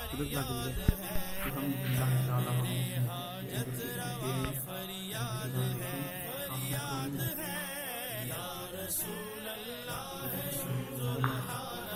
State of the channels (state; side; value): identical; both; correlation 1.00